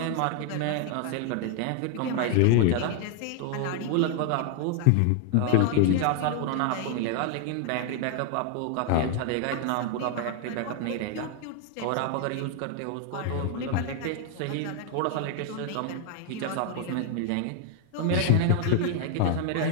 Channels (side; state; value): both; different; correlation 0.00